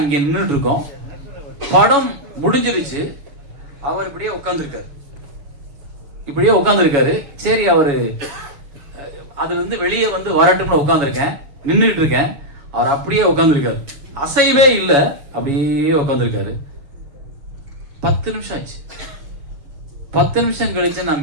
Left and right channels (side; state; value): left; late; 7.1 ms